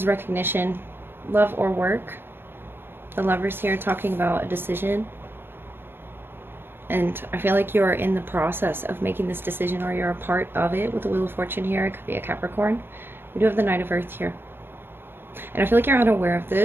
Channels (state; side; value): late; left; 0.10 ms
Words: recognition, love or work. The Lovers here talking about a decision. And I feel like you're in the process of making this decision, or you're a part of it with the Wheel of Fortune here. It could be a Capricorn. We do have the Knight of Earth here. And I feel like you're unaware of